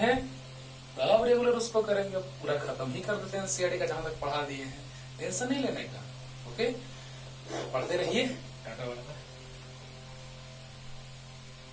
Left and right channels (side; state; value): both; identical; correlation 1.00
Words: अब रेगुलर उसको करेंगे, पूरा खत्म ही कर देते हैं NCERT का जहां तक पढ़ा दिए हैं। टेंशन नहीं लेने का, ओके। पढ़ते रहिए, टाटा बाय बाय।